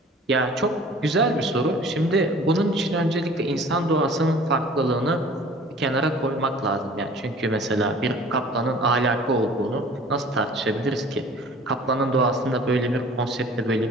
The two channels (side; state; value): both; normal; correlation 0.48